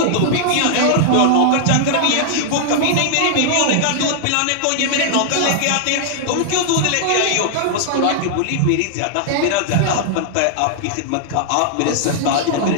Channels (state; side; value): different; both; correlation -0.01